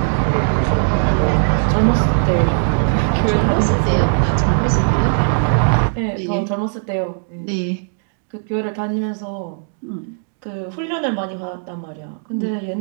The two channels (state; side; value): silent; left; digital silence